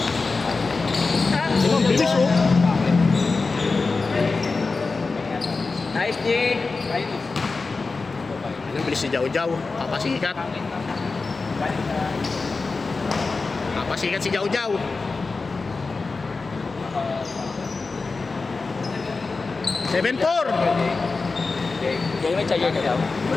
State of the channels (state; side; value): quieter; right; 4.0 dB